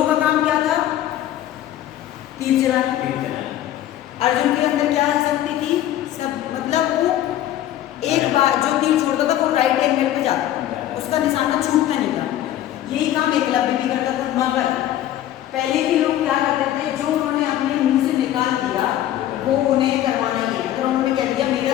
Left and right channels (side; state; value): right; quieter; 12.6 dB